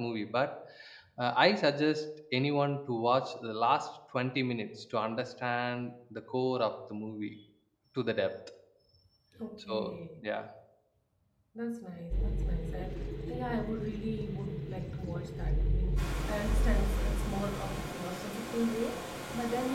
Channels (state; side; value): identical; both; correlation 1.00